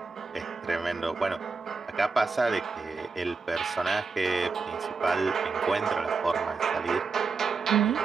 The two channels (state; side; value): quieter; left; 4.5 dB